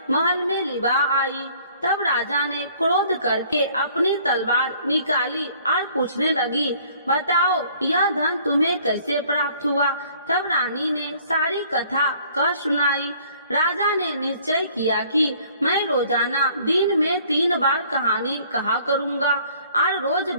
महल में लिवा आई। तब राजा ने क्रोध करके अपनी तलवार निकाली और पूछने लगी, बताओ यह धन तुम्हें कैसे प्राप्त हुआ। तब रानी ने सारी कथा कह सुनाई। राजा ने निश्चय किया कि मैं रोजाना दिन में 3 बार कहानी कहा करूँगा और रोज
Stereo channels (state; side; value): inverted; both; correlation -0.57